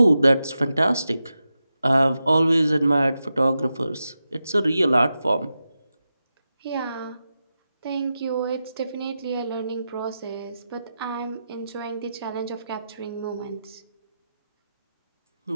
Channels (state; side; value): inverted; both; correlation -0.90